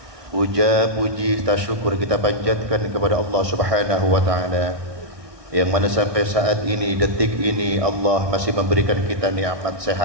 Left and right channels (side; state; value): left; late; 1.6 ms